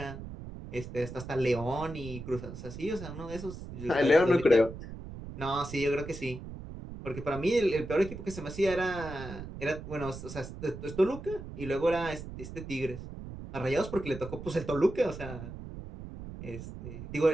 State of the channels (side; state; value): right; noise; rumble, 10 dB below the sound